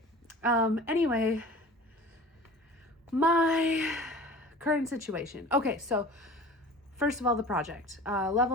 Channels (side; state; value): both; normal; correlation 0.41